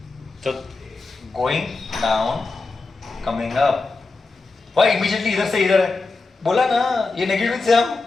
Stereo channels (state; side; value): quieter; right; 3.8 dB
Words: तो going down, coming up. Why immediately इधर से इधर है? बोला ना, ये नेगेटिव से हम